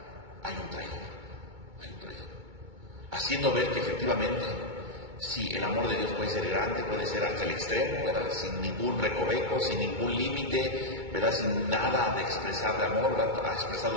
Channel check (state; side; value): late; left; 2.2 ms